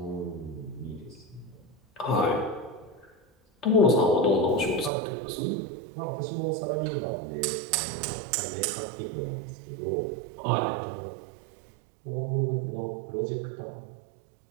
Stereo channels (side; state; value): left; drops out; at 4.9 s